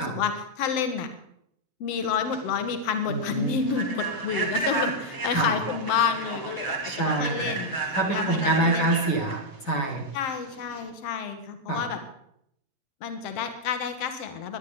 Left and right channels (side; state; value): right; late; 7.8 ms